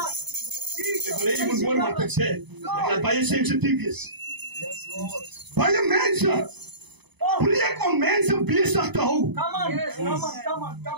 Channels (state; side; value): late; left; 0.99 ms